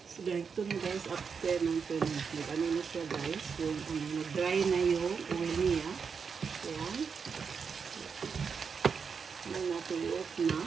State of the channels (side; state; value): left; quieter; 5.9 dB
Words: So, ganito na guys, after ng 10 minutes. Ano na siya guys, yung nag-dry na yung oil niya. Ayan. Ano natin i-off na.